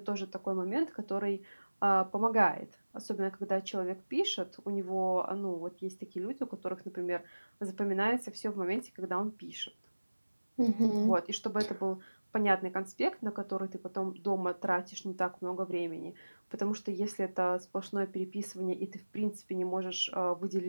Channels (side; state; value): both; inverted; correlation -1.00